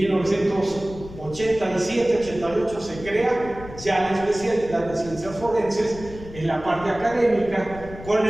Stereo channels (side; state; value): left; noise; rumble, 15 dB below the sound